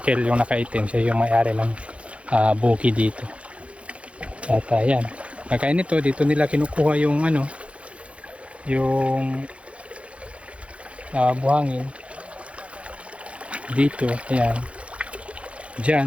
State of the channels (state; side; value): late; left; 0.062 ms